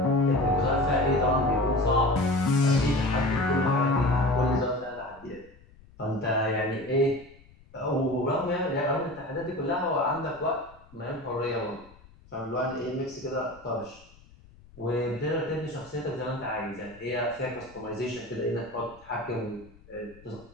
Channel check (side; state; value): left; noise; rumble, 25 dB below the sound